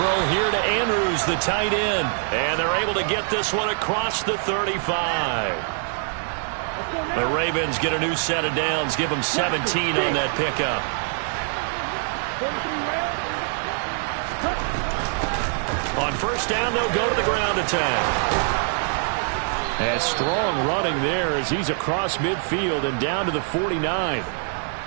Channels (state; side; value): silent; left; 57 dB below the other